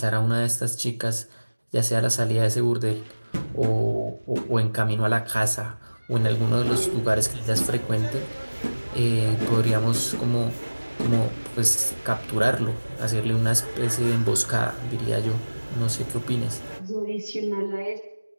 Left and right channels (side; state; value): both; inverted; correlation -1.00